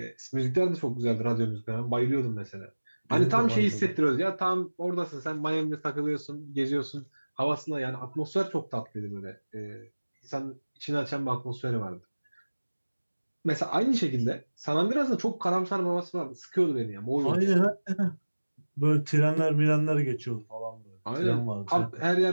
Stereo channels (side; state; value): both; inverted; correlation -1.00